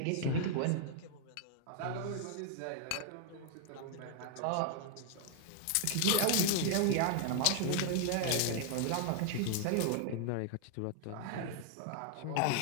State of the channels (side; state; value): both; different; correlation 0.00